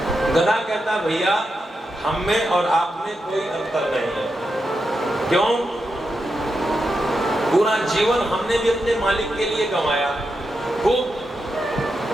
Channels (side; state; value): both; normal; correlation 0.86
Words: गधा कहता भैया हम में और आप में कोई अंतर नहीं है। क्यों? पूरा जीवन हमने भी अपने मालिक के लिए कमाया, खूब